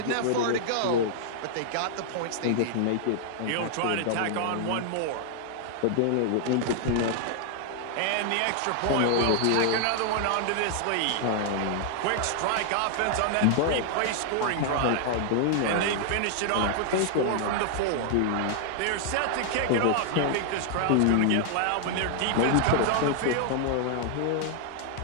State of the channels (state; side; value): different; both; correlation 0.00